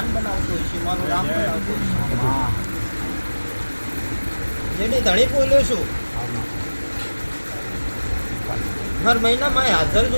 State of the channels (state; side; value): inverted; both; correlation -1.00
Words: બનાવતો હશે, મારો રામ બનાવતો હશે. હા જેની ધણી બોલ્યો છું હર મહિનામાં હાજર